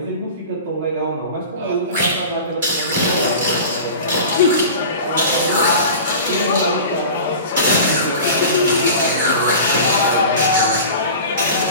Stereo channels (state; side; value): inverted; both; correlation -0.35